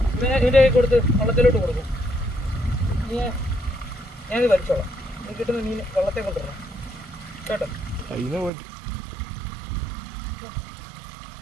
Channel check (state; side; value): drops out; left; at 8.5 s